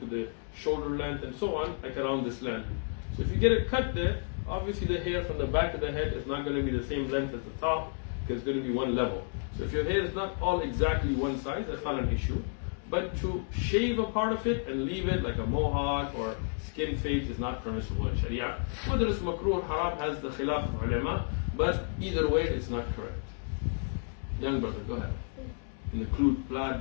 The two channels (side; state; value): right; silent; 57 dB below the other